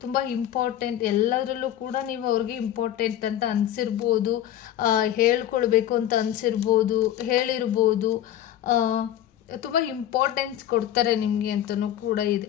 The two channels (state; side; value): quieter; right; 11.7 dB